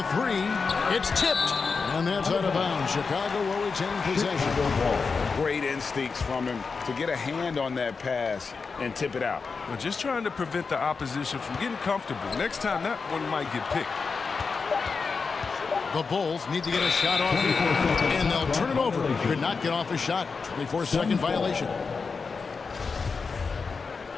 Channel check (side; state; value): right; quieter; 4.9 dB